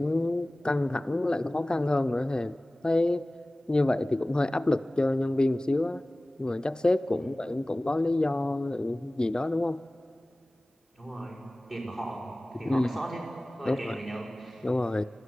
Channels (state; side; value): normal; both; correlation 0.98